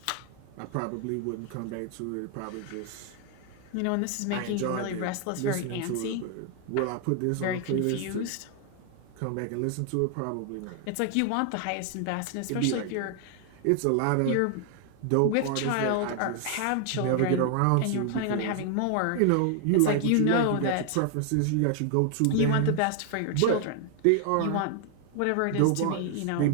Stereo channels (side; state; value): both; different; correlation 0.00